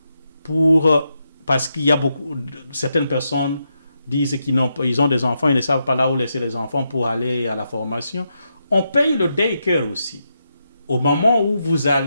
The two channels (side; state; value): both; inverted; correlation -0.83